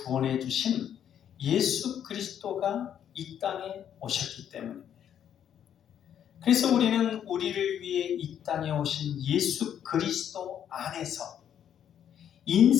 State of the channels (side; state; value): right; quieter; 9.5 dB